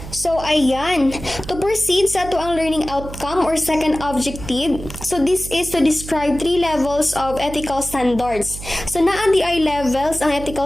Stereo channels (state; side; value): noise; right; hum, 12 dB below the sound